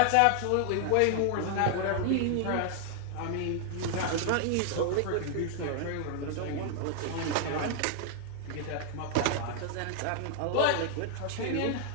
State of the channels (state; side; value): different; both; correlation 0.00